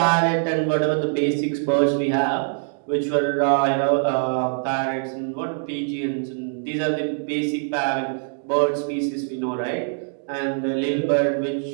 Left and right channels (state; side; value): silent; left; digital silence